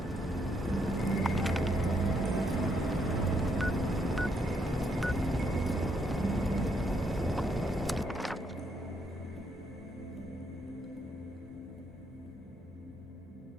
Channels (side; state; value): both; normal; correlation 0.75